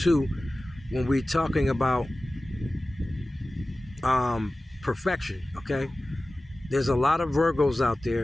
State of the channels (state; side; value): normal; both; correlation 0.96